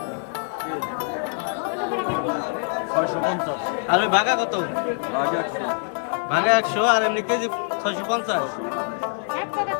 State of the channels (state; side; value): silent; right; 62 dB below the other